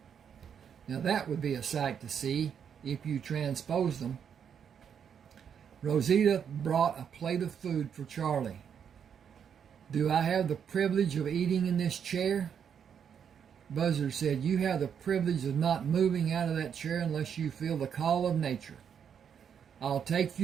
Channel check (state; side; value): quieter; left; 7.8 dB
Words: Now that would be a sight to see if you transpose them. Rosita brought a plate of food for Charlie. Do I have the privilege of eating in this chair? Buzzard said, you have the privilege of not moving out of that chair unless you feel the call of nature. I'll take